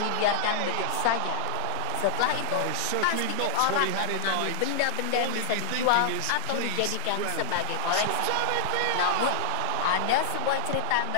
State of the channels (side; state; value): both; different; correlation -0.01